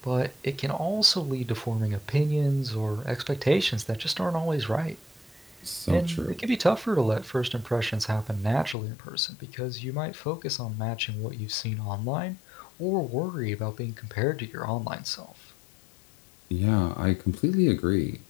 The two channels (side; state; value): right; drops out; at 8.8 s